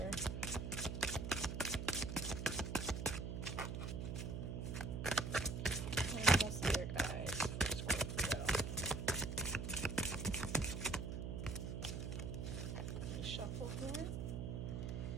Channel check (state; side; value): noise; right; hum, 3 dB below the sound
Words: Animal spirit guides for Scorpio. Let me shuffle here.